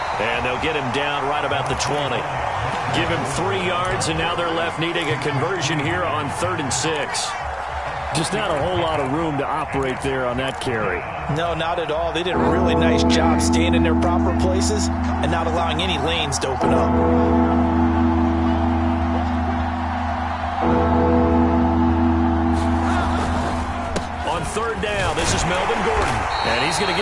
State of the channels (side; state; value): both; identical; correlation 1.00